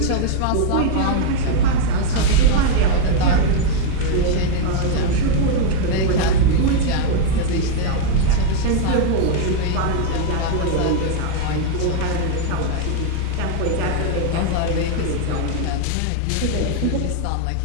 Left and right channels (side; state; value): both; different; correlation 0.00